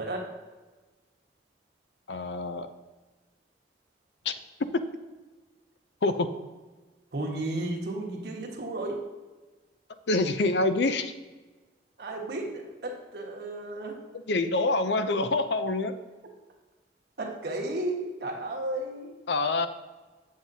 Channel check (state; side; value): normal; both; correlation 0.03